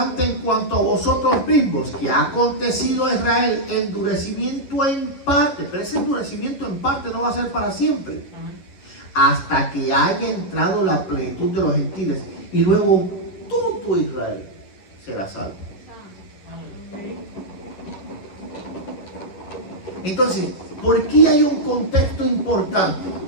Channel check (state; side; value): late; right; 11 ms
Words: en cuanto a vosotros mismos, que ha acontecido a Israel endurecimiento en parte, pero ese endurecimiento en parte no va a ser para siempre, hasta que haya entrado la plenitud de los gentiles, y luego todo Israel será salvo. Entonces, ¿por qué hay un contexto importante?